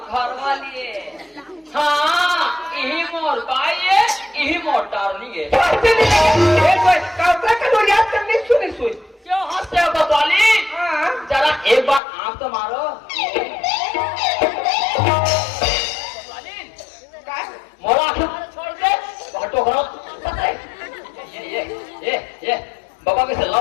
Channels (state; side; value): drops out; right; at 12.0 s